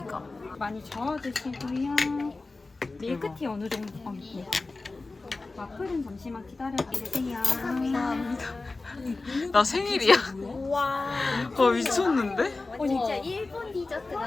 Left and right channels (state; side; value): quieter; right; 3.5 dB